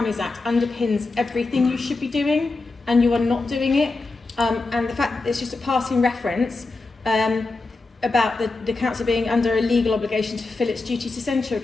Act underpins everything you should be doing, and you are not doing it. And the fact that it's just a passing reference about the council being under a legal obligation to fulfill its duty to send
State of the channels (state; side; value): quieter; right; 3.5 dB